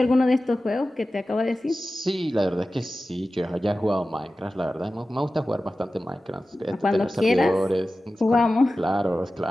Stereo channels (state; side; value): normal; both; correlation 0.95